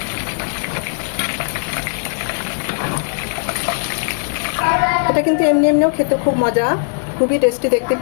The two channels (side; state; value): right; silent; digital silence